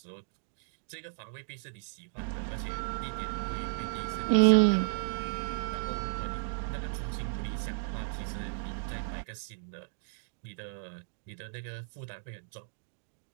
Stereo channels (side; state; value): left; silent; digital silence